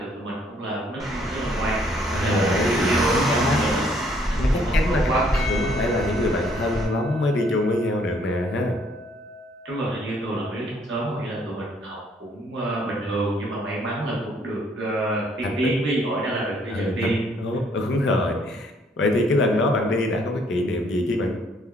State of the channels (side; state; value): both; normal; correlation 0.65